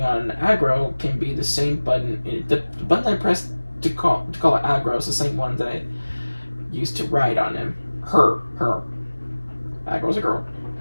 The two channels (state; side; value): inverted; both; correlation -1.00